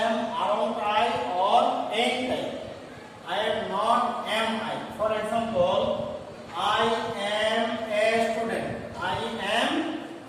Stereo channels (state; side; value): identical; both; correlation 1.00